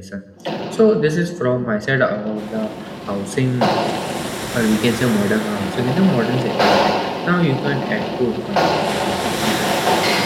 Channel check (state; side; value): identical; both; correlation 1.00